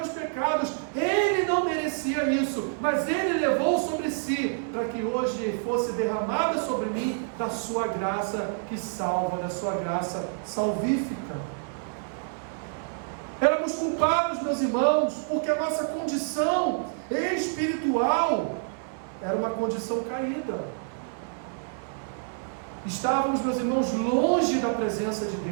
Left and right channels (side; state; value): left; silent; digital silence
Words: pecados. Ele não merecia isso, mas Ele levou sobre si, para que hoje fosse derramada sobre mim da sua graça que salva, da sua graça salvífica. Éramos culpados, meus irmãos, porque a nossa condição espiritual era uma condição caída. Estávamos, meus irmãos, longe da presença de